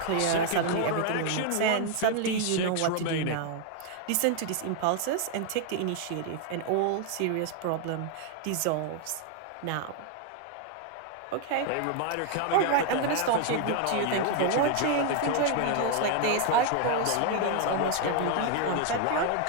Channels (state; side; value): different; both; correlation 0.00